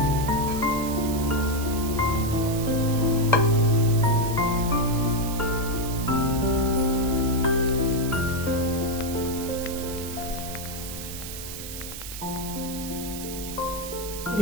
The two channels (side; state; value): right; noise; hiss, 10 dB below the sound